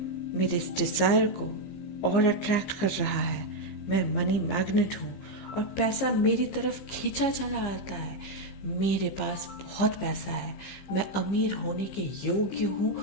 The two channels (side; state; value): right; late; 15 ms